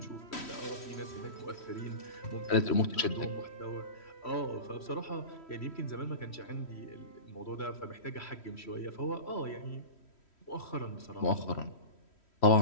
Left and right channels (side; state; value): right; late; 3.1 ms